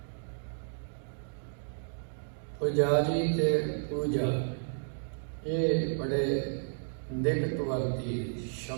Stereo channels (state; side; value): silent; left; digital silence